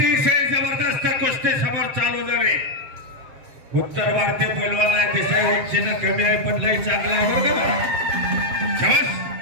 जबरदस्त कुस्ती समोर चालू झाली उत्तर भारतीय पैलवान आहे दिसाय उंचीनं कमी आहे पण लई चांगला आहे बरं का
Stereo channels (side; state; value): left; late; 7.2 ms